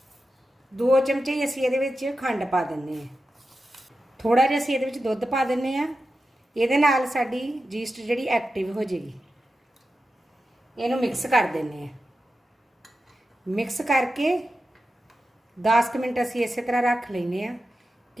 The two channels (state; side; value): normal; both; correlation 0.91